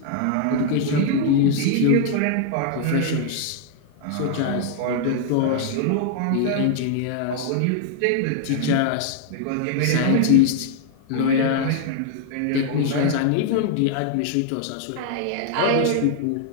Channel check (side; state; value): both; different; correlation 0.00